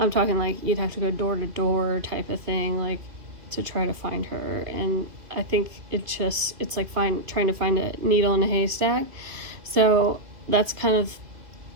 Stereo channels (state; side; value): late; left; 2.6 ms